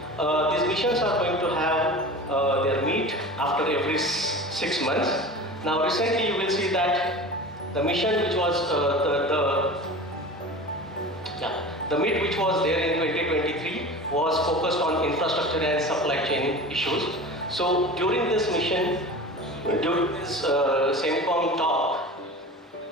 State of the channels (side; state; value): both; normal; correlation 0.35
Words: These missions are going to have their meet after every 6 months. Now recently you will see that the mission which was the meet which was there in 2023 was focused on infrastructure and supply chain issues. So during this mission, during this Semicom talk,